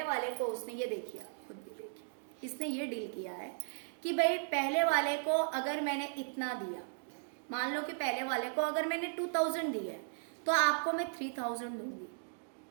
वाले को उसने ये देखिए, खुद भी देखिए, इसने ये डील किया है कि भाई पहले वाले को अगर मैंने इतना दिया, मान लो कि पहले वाले को अगर मैंने 2000 दिया है, तो आपको मैं 3000 दूंगी,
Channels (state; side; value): silent; left; digital silence